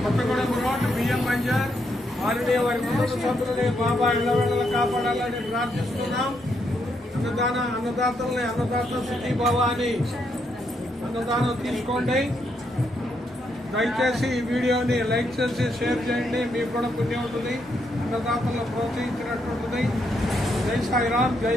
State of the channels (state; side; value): normal; both; correlation 0.78